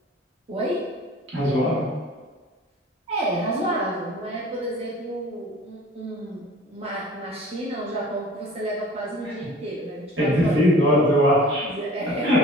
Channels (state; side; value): normal; both; correlation 0.45